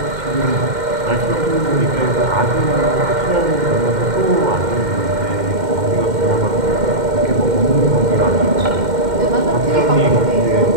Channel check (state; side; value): late; left; 2.1 ms